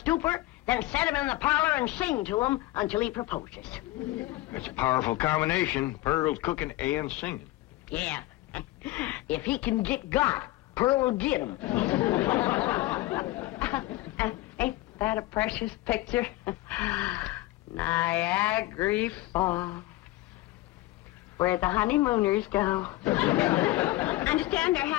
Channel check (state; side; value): quieter; right; 17.9 dB